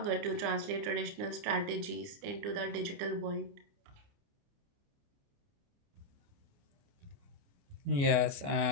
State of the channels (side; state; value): left; late; 29 ms